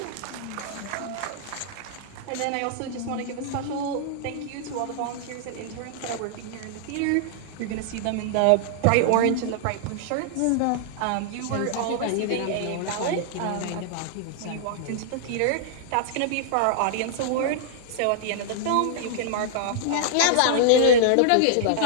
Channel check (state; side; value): different; both; correlation -0.01